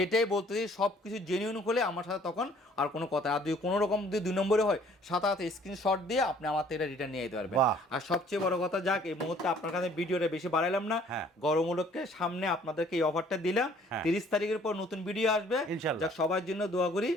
বলতেছি সবকিছু জেনুইন হলে আমার সাথে তখন আর কোনো কথা, আর যদি কোনো রকম যদি 2 নম্বরে হয় সাথে স্ক্রিনশট দিয়ে আপনি আমার থেকে এটা রিটার্ন নিয়ে যেতে পারবেন। আর সবচেয়ে বড় কথা, যাক এই মুহূর্তে আপনার কাছে ভিডিওটা বেশি বাড়াইলাম না, গরম উপলক্ষে সামনে আপনাদেরকে এই অফারটা দিলাম। 30 তারিখের পর নতুন ভিডিও আসবে, যাক সবার জন্য দোয়া করি,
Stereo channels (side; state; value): both; normal; correlation 0.58